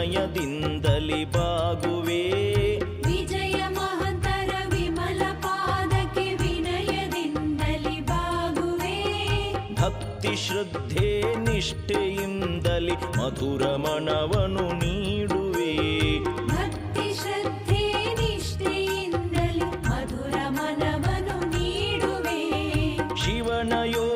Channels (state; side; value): identical; both; correlation 1.00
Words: ಬಾಗುವೆ. ವಿಜಯ ಮಹಂತರ ವಿಮಲ ಪಾದಕ್ಕೆ ವಿನಯದಿಂದಲಿ ಬಾಗುವೆ. ಭಕ್ತಿ ಶ್ರದ್ಧೆ ನಿಷ್ಠೆಯಿಂದಲಿ ಮಧುರ ಮನವನು ನೀಡುವೆ. ಭಕ್ತಿ ಶ್ರದ್ಧೆ ನಿಷ್ಠೆಯಿಂದಲಿ ಮಧುರ ಮನವನು ನೀಡುವೆ. ಶಿವನ